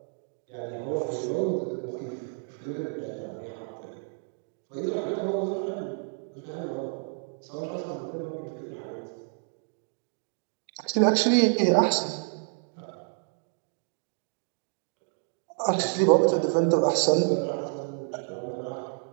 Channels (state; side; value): silent; left; 58 dB below the other